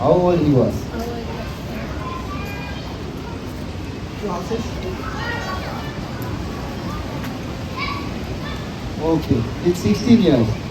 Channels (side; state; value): both; identical; correlation 1.00